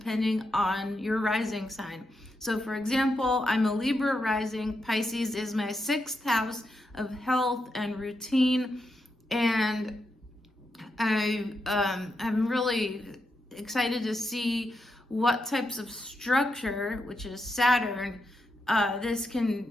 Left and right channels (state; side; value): normal; both; correlation 0.84